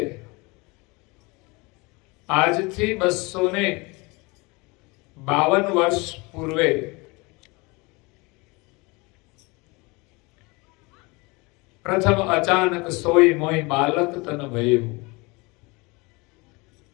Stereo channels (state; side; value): quieter; right; 26.0 dB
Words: આજથી 252 વર્ષ પૂર્વે પ્રથમ અચાનક સોઈ મોઈ બાલક તન ભયું.